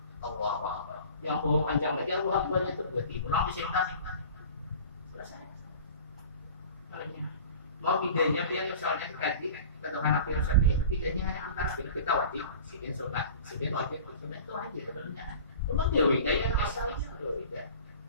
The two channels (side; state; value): both; inverted; correlation -0.41